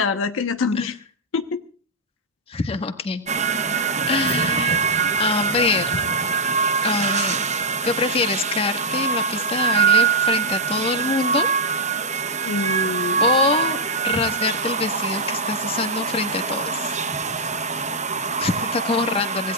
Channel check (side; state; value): both; normal; correlation -0.06